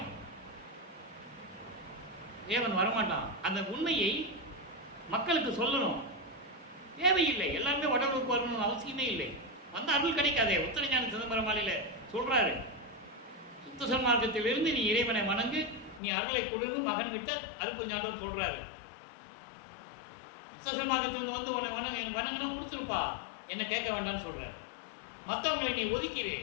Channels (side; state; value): right; drops out; at 16.0 s